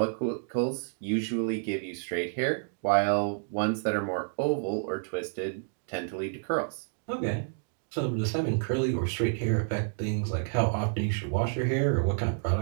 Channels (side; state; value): left; silent; digital silence